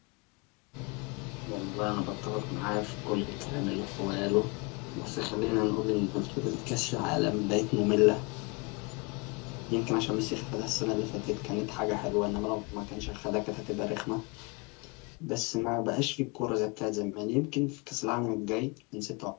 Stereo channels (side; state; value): right; quieter; 29.3 dB